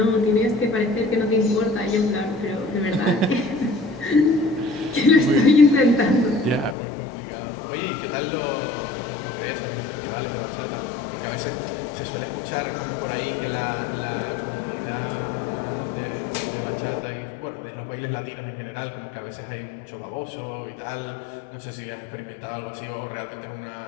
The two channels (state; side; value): drops out; right; at 6.8 s